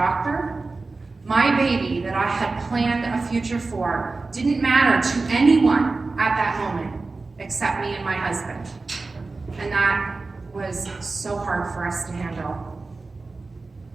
My baby that I had planned a future for didn't matter to anyone at that moment except me and my husband. And that was so hard for us to handle.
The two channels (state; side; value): quieter; left; 3.7 dB